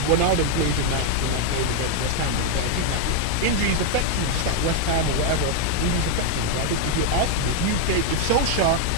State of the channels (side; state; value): both; different; correlation 0.00